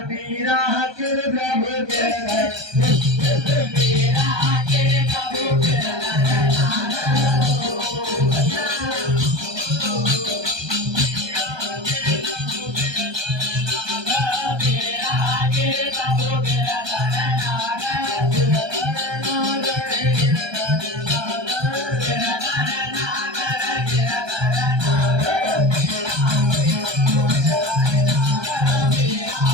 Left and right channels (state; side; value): late; left; 1.2 ms